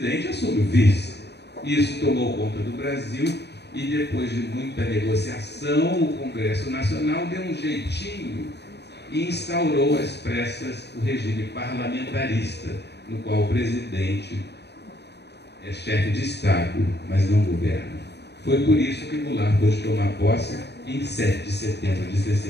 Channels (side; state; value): right; late; 0.49 ms